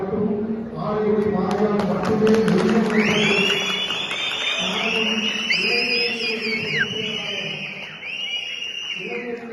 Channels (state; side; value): identical; both; correlation 1.00